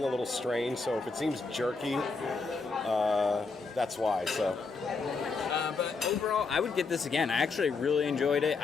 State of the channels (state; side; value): quieter; right; 4.3 dB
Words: a little strange. So if it seems jerky, that's why. So. But overall, I would get this again. I actually really enjoyed it.